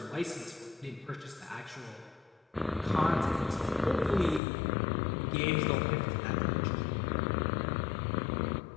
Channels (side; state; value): right; drops out; at 4.4 s